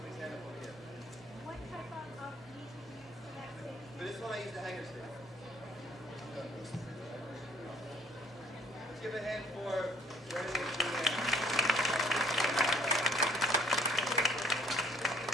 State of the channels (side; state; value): both; normal; correlation 0.59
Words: hand up over here. What type of meat do you use for that steak? For this one, I use the hanger steak. Let's give a hand for Brennan and Julianne.